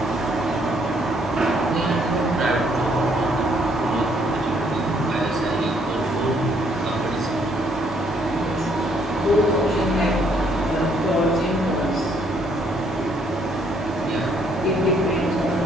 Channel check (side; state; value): both; normal; correlation 0.68